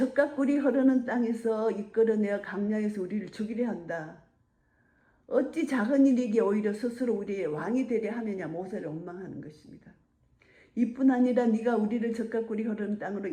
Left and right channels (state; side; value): identical; both; correlation 1.00